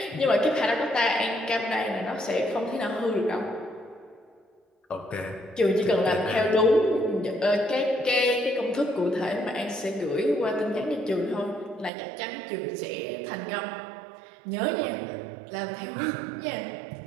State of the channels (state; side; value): drops out; left; at 11.9 s